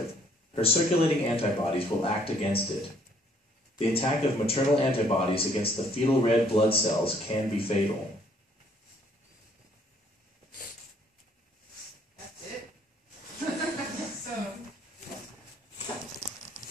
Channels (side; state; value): both; normal; correlation 0.63